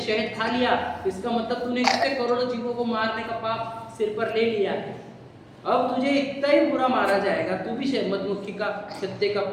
खा लिया, इसका मतलब तूने कितने करोड़ों जीवों को मारने का पाप सिर पर ले लिया है। अब तुझे इतना ही बुरा मारा जाएगा, तू भी मधुमक्खी का छत्ते का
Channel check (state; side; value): identical; both; correlation 1.00